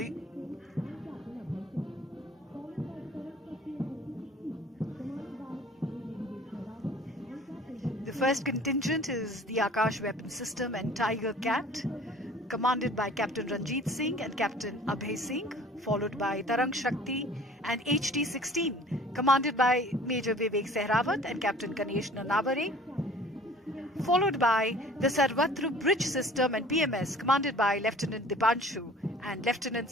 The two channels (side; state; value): both; normal; correlation 0.48